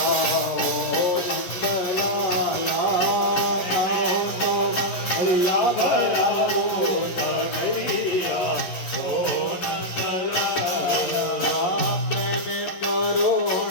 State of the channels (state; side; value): late; right; 11 ms